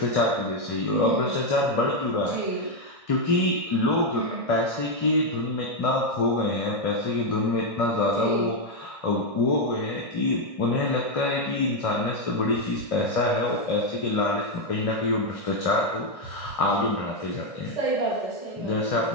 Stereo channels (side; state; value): right; late; 1.6 ms